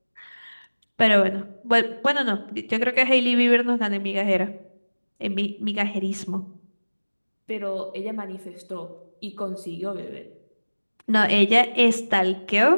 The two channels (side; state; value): both; inverted; correlation -1.00